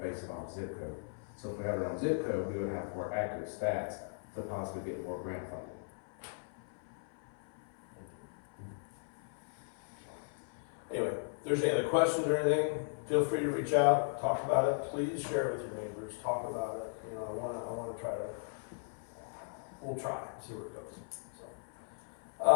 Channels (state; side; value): silent; right; 53 dB below the other